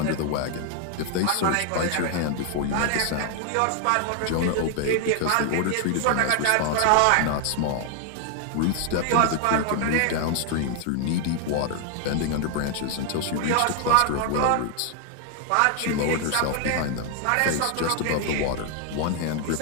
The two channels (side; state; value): both; different; correlation 0.00